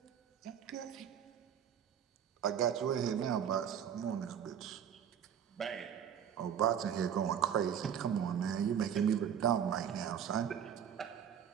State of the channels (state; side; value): quieter; left; 8.6 dB